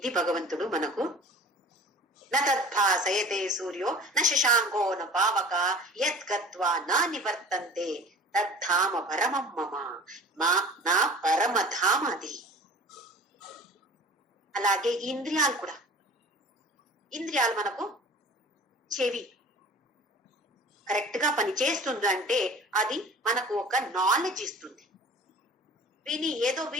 భగవంతుడు మనకు న తద్భాసయతే సూర్యో న శశాంకో న పావక యత్ గత్వా నా నివర్తంతే తద్ధామ పరమం మమ, నా పరమధామ అది. అలాగే ఇంద్రియాలు కూడా. ఇంద్రియాలు మనకు చెవి కరెక్ట్ గా పని చేస్తుందంటే అది మనకు ఒక నాలెడ్జ్ ఇస్తుంది. ఏదో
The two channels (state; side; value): normal; both; correlation 0.42